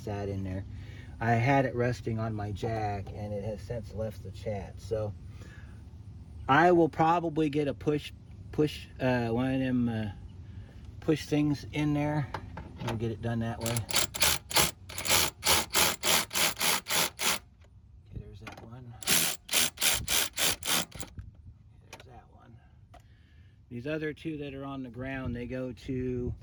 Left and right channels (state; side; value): identical; both; correlation 1.00